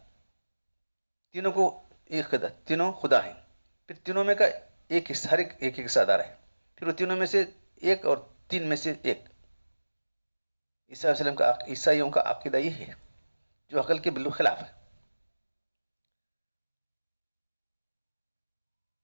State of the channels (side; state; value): both; inverted; correlation -1.00